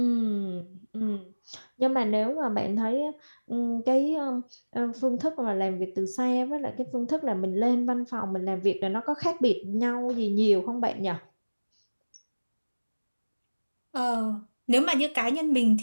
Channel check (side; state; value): both; inverted; correlation -1.00